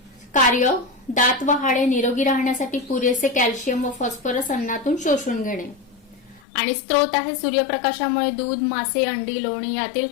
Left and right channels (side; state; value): right; drops out; at 6.5 s